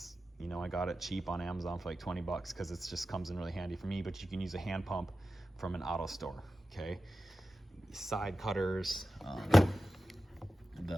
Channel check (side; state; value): both; normal; correlation 0.93